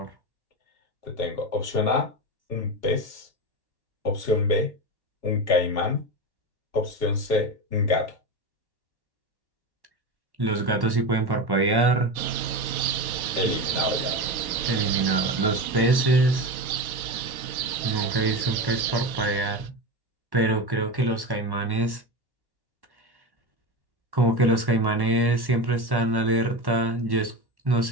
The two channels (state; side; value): late; left; 1.1 ms